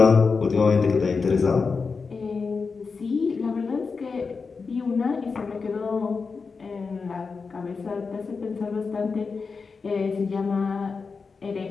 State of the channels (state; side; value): quieter; right; 4.8 dB